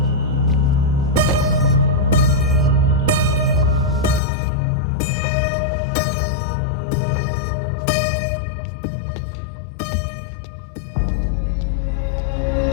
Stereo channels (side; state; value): right; drops out; at 4.2 s